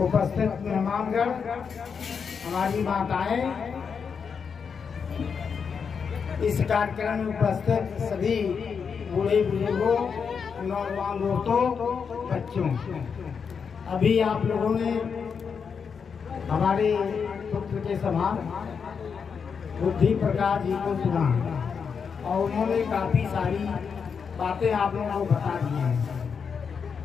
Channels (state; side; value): quieter; right; 6.2 dB